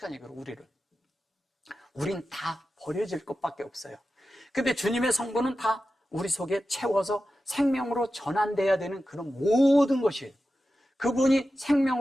얘기로 우리를. 우린 다 버려질 것밖에 없어요. 근데 주님의 성부는 다 우리 속에 채워서 생명으로 전환돼야 되는 그런 모든 것이에요. 그분이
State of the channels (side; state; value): both; normal; correlation 0.92